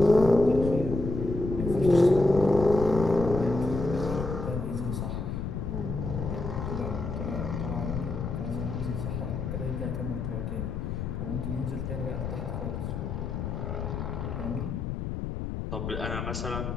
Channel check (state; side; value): noise; left; rumble, 4 dB below the sound